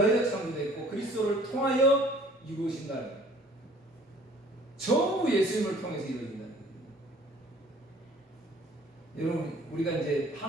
창조됐고 그리스도를 통하여 이루어진다는 거예요. 전부 예수님을 통해서 이루어진다는 거예요. 여러분 우리가 이제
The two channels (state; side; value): normal; both; correlation 0.53